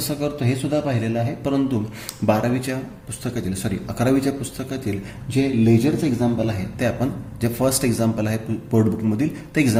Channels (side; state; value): both; identical; correlation 1.00